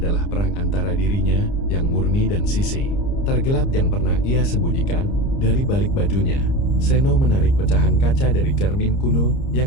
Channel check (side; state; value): right; late; 30 ms